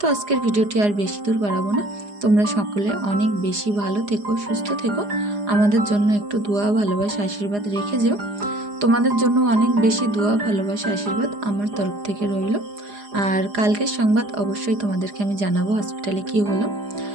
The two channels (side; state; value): left; late; 4.9 ms